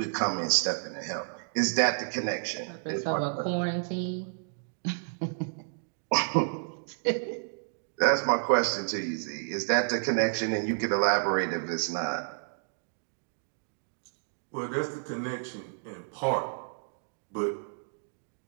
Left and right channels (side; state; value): left; silent; digital silence